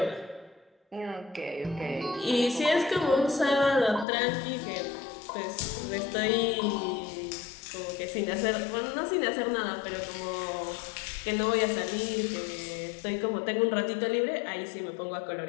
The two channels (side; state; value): right; drops out; at 4.0 s